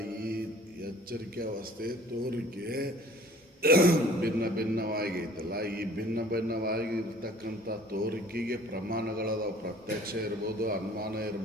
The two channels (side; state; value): both; normal; correlation 0.51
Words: ಈ ಎಚ್ಚರಿಕೆ ಅವಸ್ಥೆ ತೋರಿಕೆ ಭಿನ್ನ ಭಿನ್ನವಾಗೈತಲ್ಲ. ಈ ಭಿನ್ನ ಭಿನ್ನವಾಗಿರ್ತಕ್ಕಂಥ ತೋರಿಕೆಗೆ ಪ್ರಮಾಣಗಳದಾವ. ಪ್ರತ್ಯಕ್ಷ ಇರ್ಬೋದು, ಅನುಮಾನ